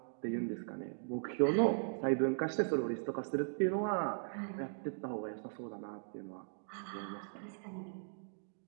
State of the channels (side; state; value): left; silent; digital silence